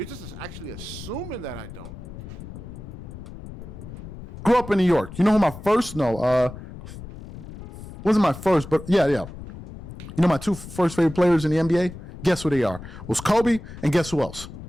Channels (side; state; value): left; noise; rumble, 13 dB below the sound